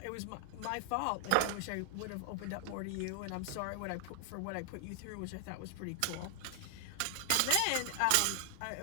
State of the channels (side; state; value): both; different; correlation 0.00